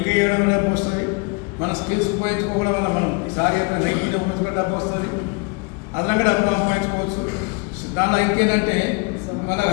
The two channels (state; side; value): quieter; right; 31.2 dB